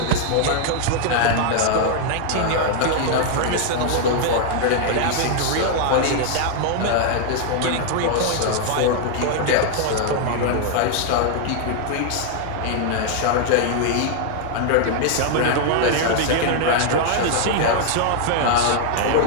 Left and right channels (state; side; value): different; both; correlation 0.00